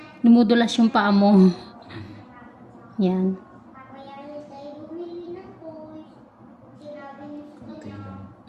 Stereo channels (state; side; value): identical; both; correlation 1.00